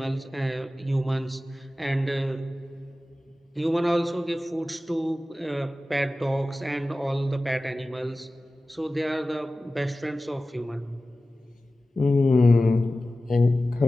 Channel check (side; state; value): both; normal; correlation 0.95